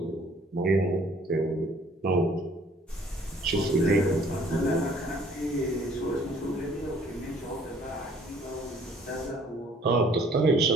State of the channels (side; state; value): both; normal; correlation 0.58